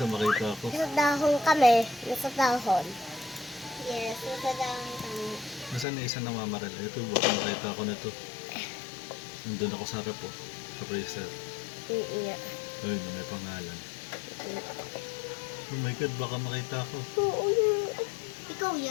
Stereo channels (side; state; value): right; drops out; at 5.9 s